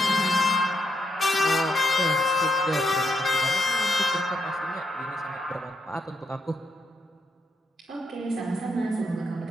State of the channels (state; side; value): normal; both; correlation 0.79